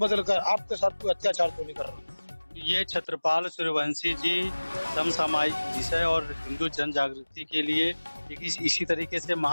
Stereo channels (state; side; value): inverted; both; correlation -1.00